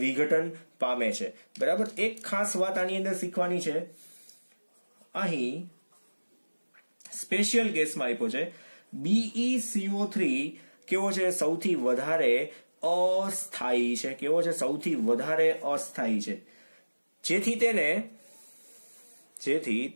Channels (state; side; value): inverted; both; correlation -1.00